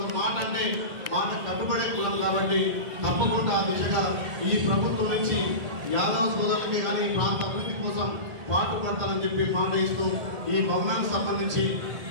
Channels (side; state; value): left; late; 1.8 ms